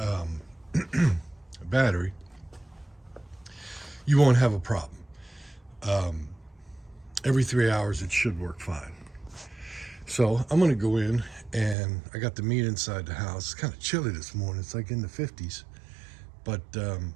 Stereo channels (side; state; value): left; drops out; at 11.8 s